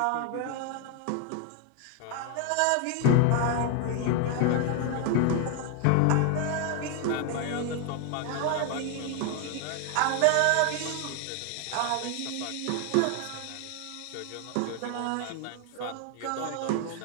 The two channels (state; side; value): different; both; correlation 0.01